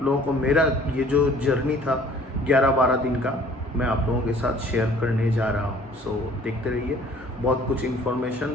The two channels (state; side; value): normal; both; correlation 0.54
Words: लोगों को मेरा ये जो जर्नी था 11-12 दिन का मैं आप लोगों के साथ शेयर करने जा रहा हूँ। देखते रहिए, बहुत कुछ